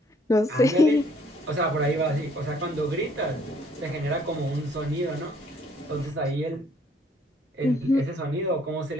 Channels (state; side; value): normal; both; correlation 0.63